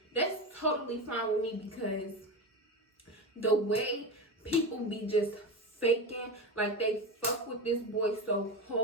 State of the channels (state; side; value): normal; both; correlation 0.22